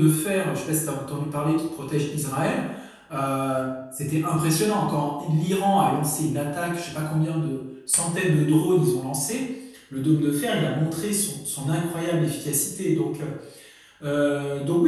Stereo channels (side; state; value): both; identical; correlation 1.00